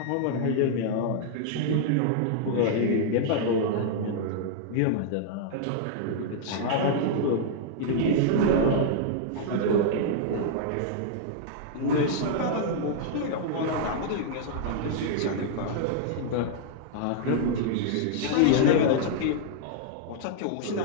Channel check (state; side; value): different; both; correlation -0.01